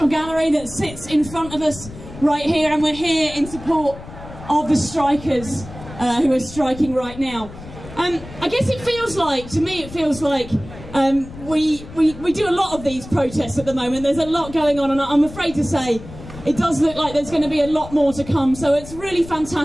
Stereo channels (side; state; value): left; noise; rumble, 15 dB below the sound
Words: Gallery that sits in front of us right here, and we're here in support of the strikers who are striking right now. I guess it feels like, to me it feels like we do a lot of these protests at the moment. There's a lot going on, and I'm afraid to say it does look like there's going to be a lot more to come. So it's really